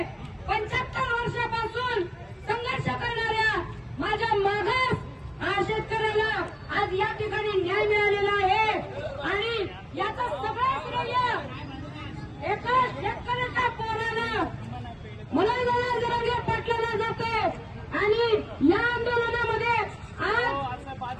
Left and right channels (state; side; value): identical; both; correlation 1.00